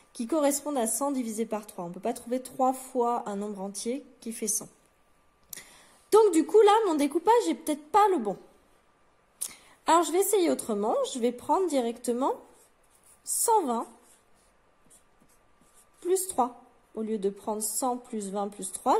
qui corresponde à 100 divisé par 3. On ne peut pas trouver 3 fois un nombre entier qui fait 100. Donc du coup là, mon découpage n'est peut-être pas le bon. Alors je vais essayer autrement. Je vais prendre directement 120 plus 3. Au lieu de prendre 100 plus 20 plus 3,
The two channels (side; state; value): both; identical; correlation 1.00